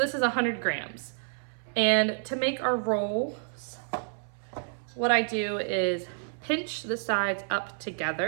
is 100 grams. And to make our rolls, what I do is pinch the sides up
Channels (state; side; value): silent; left; 57 dB below the other